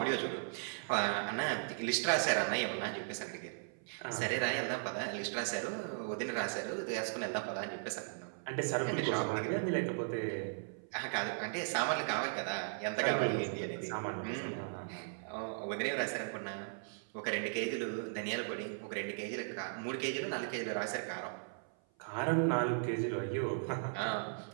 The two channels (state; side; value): silent; left; 53 dB below the other